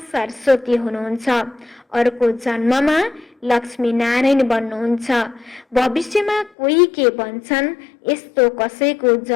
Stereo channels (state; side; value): drops out; right; at 6.5 s